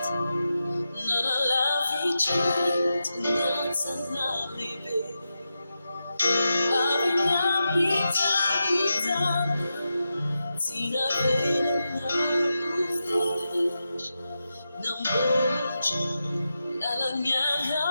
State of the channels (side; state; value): both; inverted; correlation -0.89